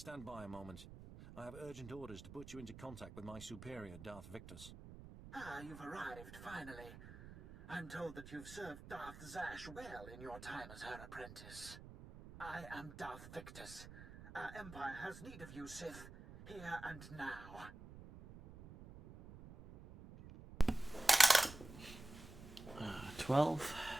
by a moment. I have urgent orders to put you into contact with my superior, Darth Victus. Ah, you've arrived, finally. I'm told that you've served Darth Zash well in your time as her apprentice. I am Darth Victus. Our Empire has need of you, Sith, here and now. 12.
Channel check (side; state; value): right; noise; rumble, 14 dB below the sound